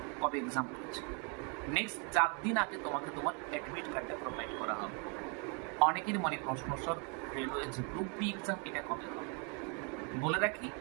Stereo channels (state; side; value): quieter; left; 36.0 dB